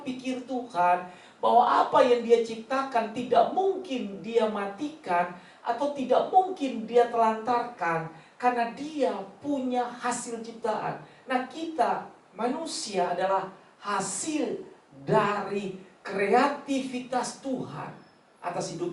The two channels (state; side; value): identical; both; correlation 1.00